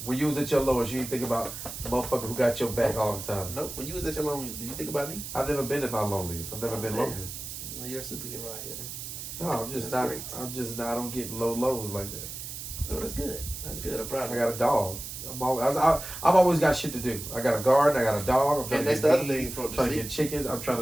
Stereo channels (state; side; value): noise; right; hiss, 9 dB below the sound